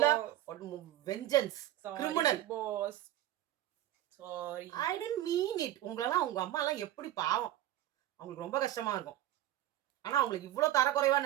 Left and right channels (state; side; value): quieter; left; 13.5 dB